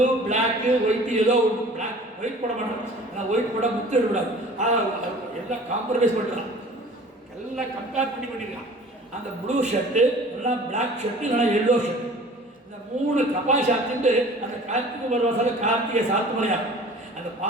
பிளாக்கு ஒயிட், ஏதோ ஒன்று பிளாக் ஒயிட் போட மாட்டோம். ஆனால் ஒயிட் போட முத்து விடாது. எல்லாம் காம்ப்ரமைஸ் பண்ணுறான், எல்லாம் கம்பேர் பண்ணிக்கலாம். அந்த ப்ளூ ஷர்ட்டு, எல்லாம் பிளாக் ஷர்ட்டு, இல்லைனா எல்லோ ஷர்ட்டு, இந்த 3 கபாய் சாத்திட்டு அந்த கார்த்திகை உபவாசல கார்த்திகை சாத்துமலையாகும். அந்த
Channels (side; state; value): both; normal; correlation 0.46